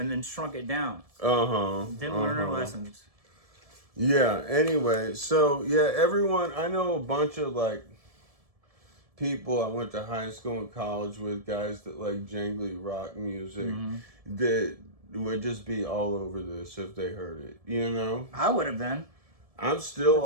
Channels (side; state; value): left; late; 1.7 ms